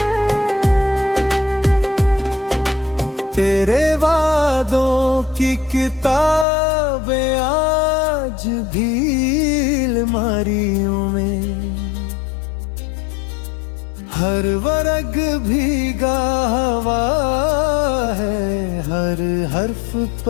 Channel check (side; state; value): right; drops out; at 6.5 s